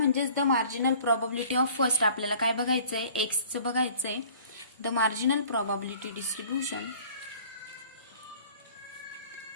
the marginal probability of first आपल्याला काय बघायचंय, एक्सचं बघायचंय. The marginal probability distribution.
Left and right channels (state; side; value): inverted; both; correlation -0.50